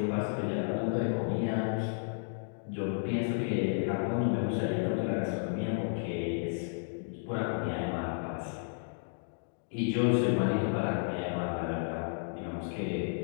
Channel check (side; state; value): right; silent; digital silence